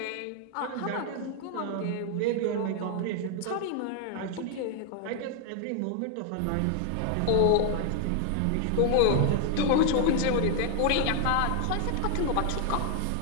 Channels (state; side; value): different; both; correlation 0.00